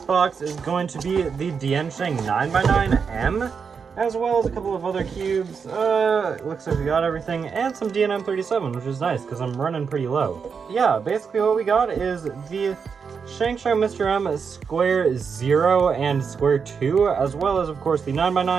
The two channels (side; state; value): left; quieter; 6.0 dB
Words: box is going to be the DianSheng 9x9M, as well as a couple of other cubes. Looks like we got everything, and some DNM37, which is nice, because I'm running pretty low. Yeah, basically what we got is the Shangshou Mr. M Square 0 and Square 2, as well as, of course, the